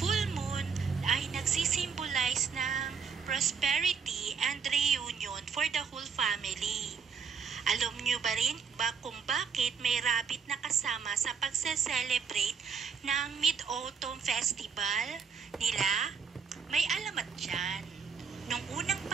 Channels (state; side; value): quieter; left; 6.2 dB